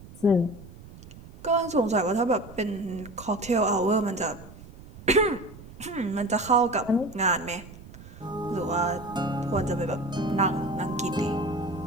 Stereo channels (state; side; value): noise; right; rumble, 18 dB below the sound